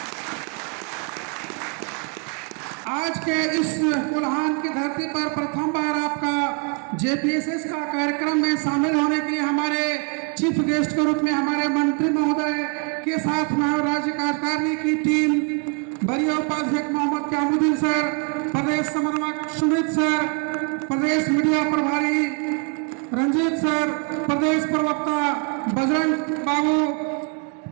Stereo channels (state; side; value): quieter; left; 36.9 dB